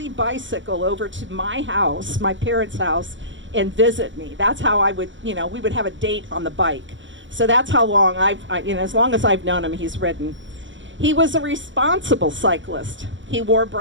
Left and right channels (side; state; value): left; late; 0.55 ms